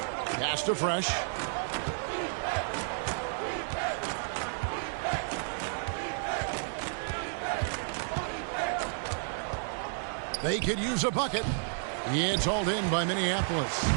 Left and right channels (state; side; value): silent; left; digital silence